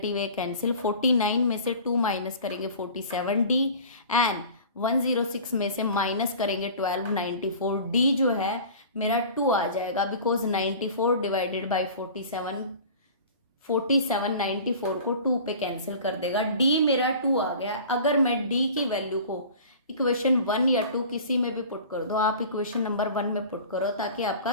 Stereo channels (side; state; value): both; inverted; correlation -0.41